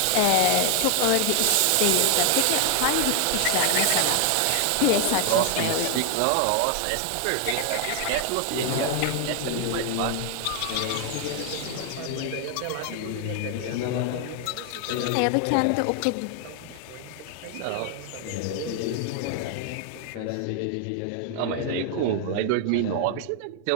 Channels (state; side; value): different; both; correlation 0.00